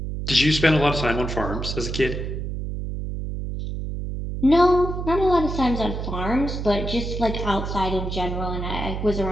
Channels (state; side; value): noise; right; hum, 5 dB below the sound